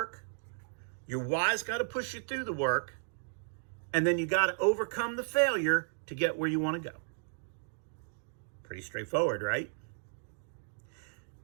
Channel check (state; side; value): silent; left; digital silence